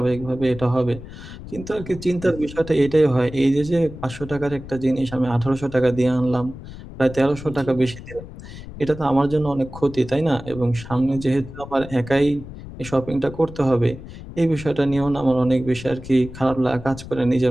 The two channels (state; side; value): noise; left; rumble, 14 dB below the sound